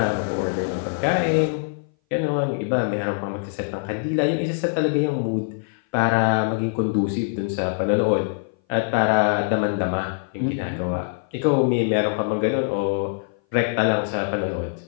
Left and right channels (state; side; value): silent; right; 58 dB below the other